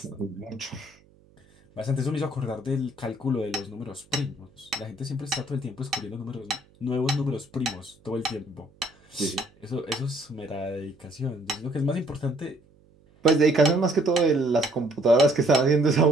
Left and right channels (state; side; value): noise; right; hum, 30 dB below the sound